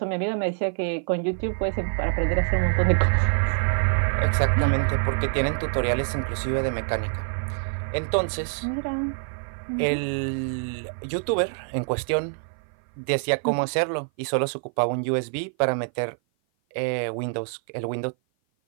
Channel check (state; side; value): silent; left; 56 dB below the other